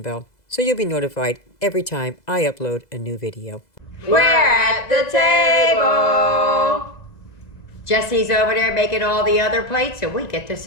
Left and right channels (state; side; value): late; right; 2.0 ms